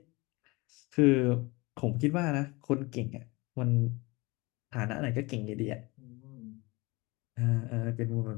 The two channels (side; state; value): right; quieter; 24.0 dB